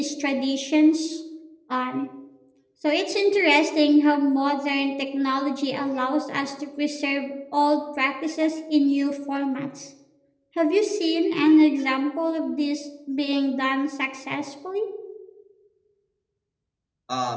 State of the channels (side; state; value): both; identical; correlation 1.00